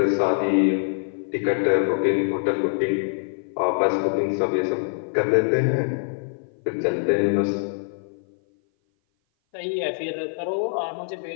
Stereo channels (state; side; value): silent; right; 57 dB below the other